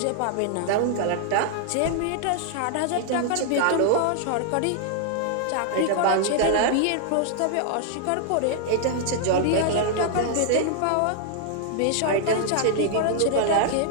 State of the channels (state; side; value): different; both; correlation -0.01